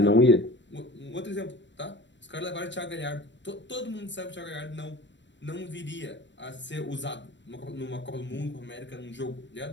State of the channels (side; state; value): right; late; 0.53 ms